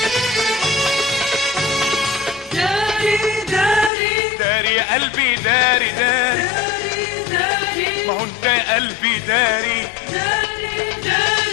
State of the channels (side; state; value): right; drops out; at 3.9 s